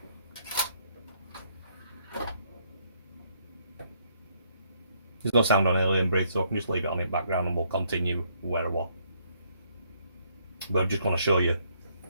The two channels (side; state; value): both; inverted; correlation -0.70